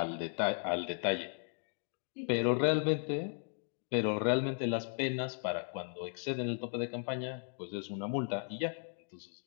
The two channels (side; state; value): right; silent; 54 dB below the other